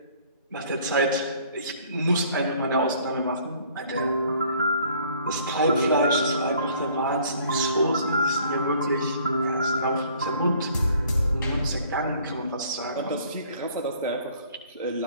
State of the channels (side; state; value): both; inverted; correlation -0.57